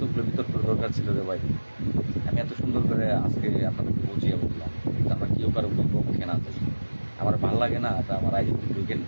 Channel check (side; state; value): both; inverted; correlation -1.00